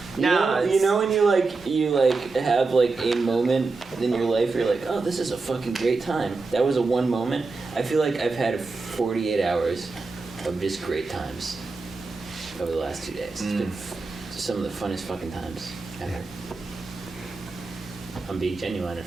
You know when you have like a moment in your life where you're like, oh, this is a fucking great time. That was a one moment. I feel like I've had 48 hours of just great times over the last 2 days. It's been some of the funnest fucking times ever. I'm being genuine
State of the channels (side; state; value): left; quieter; 3.9 dB